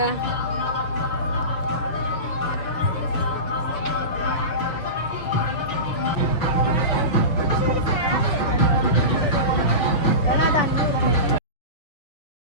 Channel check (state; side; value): late; right; 6.5 ms